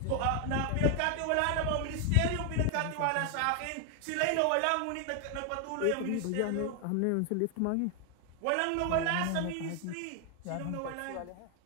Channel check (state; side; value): different; both; correlation 0.00